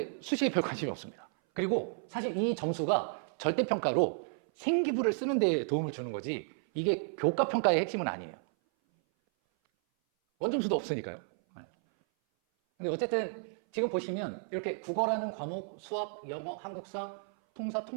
수시에 별 관심이 없습니다. 그리고 사실 이 점수가 절대평가로 생기부를 쓰는 데 도움을 주는 거지 이게 교과평가의 핵심은 아니에요. 원점수도 없으니까요. 근데 어쨌든 지금 보시면 이렇게 국어라는 과목, 수학, 영어, 한국사, 통사,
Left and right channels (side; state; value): left; silent; 56 dB below the other